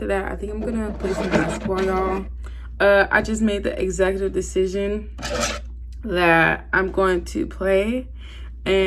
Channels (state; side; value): identical; both; correlation 1.00